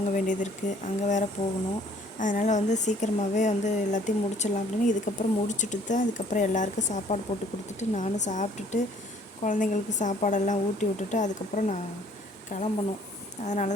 வேண்டியது இருக்குது, அங்கே வேறு போகணும். அதனால் வந்து சீக்கிரமாகவே வந்து எல்லாத்தையும் முடிச்சிடலாம் அப்படின்னு இதுக்கப்புறம் முடிச்சுட்டு தான் அதுக்கப்புறம் எல்லாேருக்கும் சாப்பாடு போட்டு கொடுத்துட்டு நானும் சாப்பிட்டுட்டு குழந்தைங்களுக்கு சாப்பாடெல்லாம் ஊட்டி விட்டுட்டு அதுக்கப்புறம் நான் கிளம்பணும். அதனால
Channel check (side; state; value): both; normal; correlation 0.58